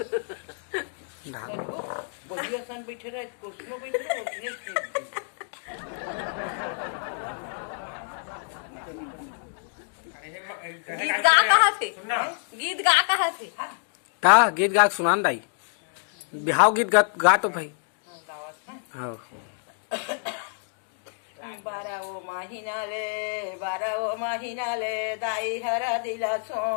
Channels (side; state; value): right; silent; digital silence